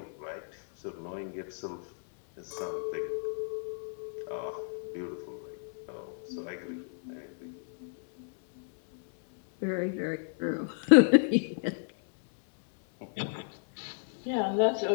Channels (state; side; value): silent; right; 56 dB below the other